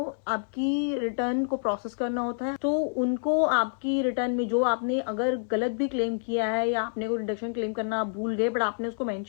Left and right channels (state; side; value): silent; right; digital silence